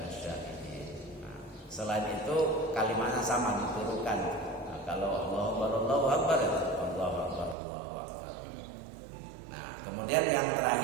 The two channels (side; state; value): left; drops out; at 7.6 s